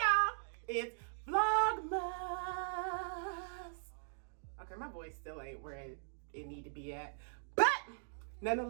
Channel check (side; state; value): left; silent; digital silence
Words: it's Vlogmas. Okay, my voice still ain't where it need to be at, but